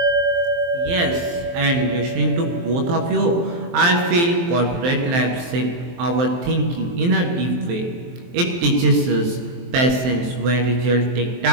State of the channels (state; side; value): late; left; 23 ms